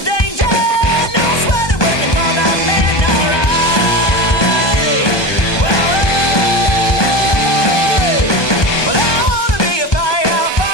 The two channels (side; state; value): right; late; 1.2 ms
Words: danger. No sweating working for the man, alright. Well, I wanna be a